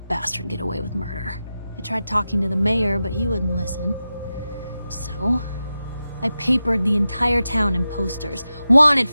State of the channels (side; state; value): both; inverted; correlation -0.92